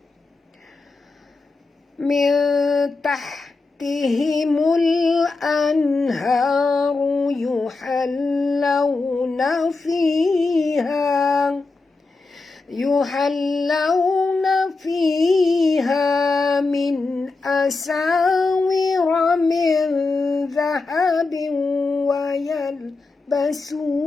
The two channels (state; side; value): quieter; right; 3.7 dB